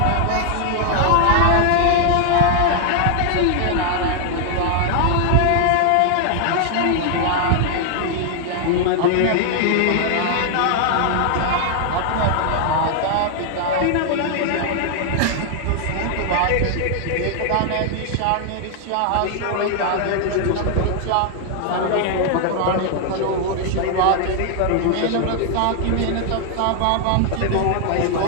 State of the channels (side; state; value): both; different; correlation 0.00